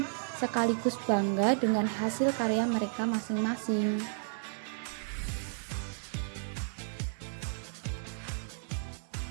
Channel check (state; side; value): silent; left; digital silence